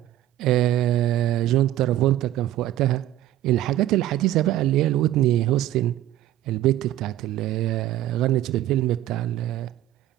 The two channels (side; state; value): left; quieter; 13.6 dB